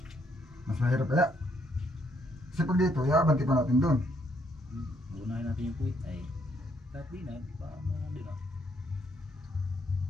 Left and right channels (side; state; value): both; normal; correlation 0.72